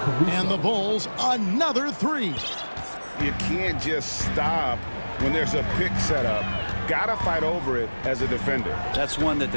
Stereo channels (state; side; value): inverted; both; correlation -1.00